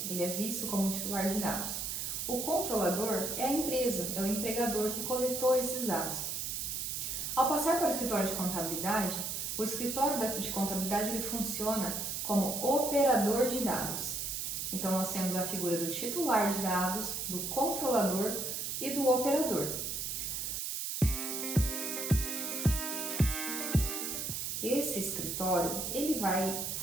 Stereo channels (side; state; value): right; noise; hiss, 3 dB below the sound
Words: ele é visto como titular de dados. O controlador é a empresa, é o empregador que coletou esses dados. Ao passar para o escritório de contabilidade, o escritório de contabilidade ele funciona como operador de dados. Então, nós temos a figura do titular de dados, do controlador e do operador. Esse escritório ele vai